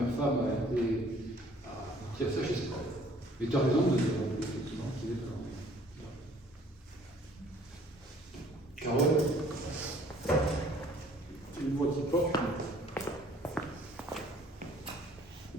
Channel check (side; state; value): both; normal; correlation 0.57